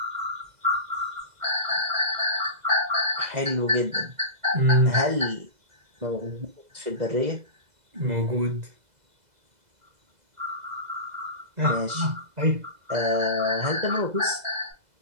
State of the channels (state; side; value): late; left; 2.0 ms